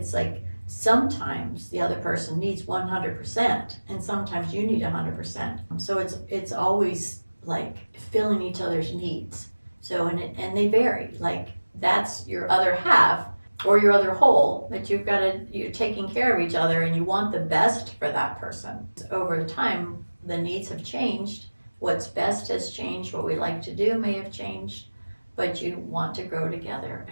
like sometimes the other person needs 100%, and sometimes you need 100%. So it's always like filling each other's needs. So and they vary. Like, that's your other half or your other whole, that you're taking care of each other, and you want the best for that person. Over time, the needs have changed. What's best has changed. What we like to do may have changed, but you want to grow together,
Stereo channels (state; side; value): inverted; both; correlation -1.00